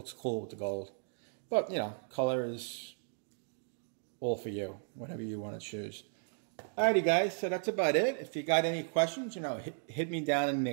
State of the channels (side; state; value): left; silent; digital silence